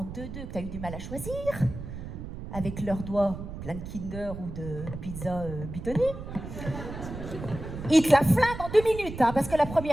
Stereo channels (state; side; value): noise; right; rumble, 9 dB below the sound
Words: 2-2 que t'as eu du mal à choisir, avec leurs doigts pleins de Kinder ou de pizza bitonnée. Ils te la flinguent en 2 minutes, hein, parce que la